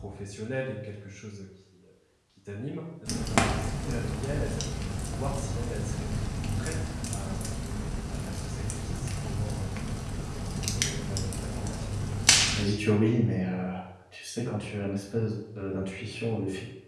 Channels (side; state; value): both; identical; correlation 1.00